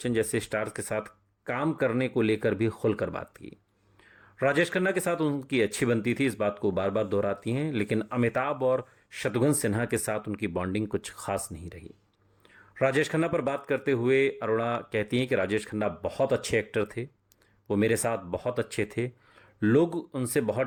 जैसे स्टार्स के साथ काम करने को लेकर भी खुलकर बात की। राजेश खन्ना के साथ उनकी अच्छी बनती थी, इस बात को बार बार दोहराती हैं, लेकिन अमिताभ और शत्रुघ्न सिन्हा के साथ उनकी बॉन्डिंग कुछ खास नहीं रही। राजेश खन्ना पर बात करते हुए अरोड़ा कहती हैं कि राजेश खन्ना बहुत अच्छे एक्टर थे, वो मेरे साथ बहुत अच्छे थे, लोग उनसे बहुत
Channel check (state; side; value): identical; both; correlation 1.00